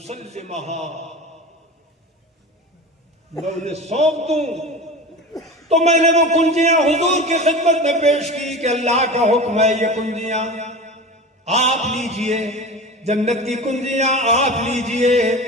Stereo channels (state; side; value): normal; both; correlation 0.31